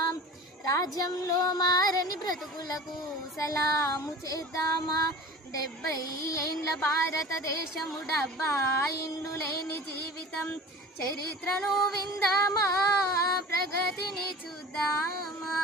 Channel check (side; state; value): both; normal; correlation 0.38